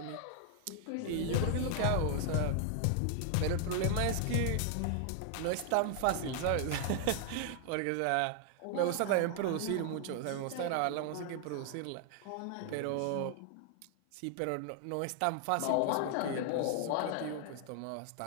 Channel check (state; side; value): different; both; correlation 0.00